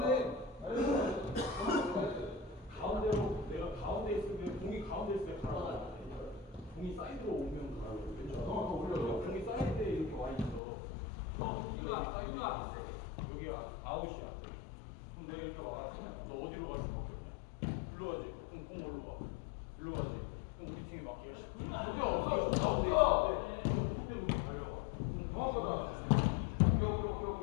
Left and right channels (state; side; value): drops out; right; at 10.6 s